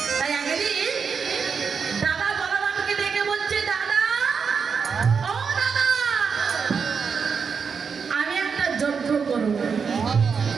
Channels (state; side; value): quieter; left; 5.9 dB